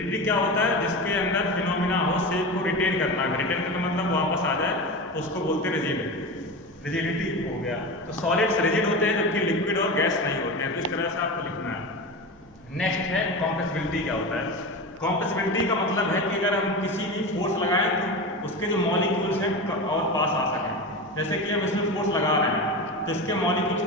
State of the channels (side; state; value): left; noise; hum, 28 dB below the sound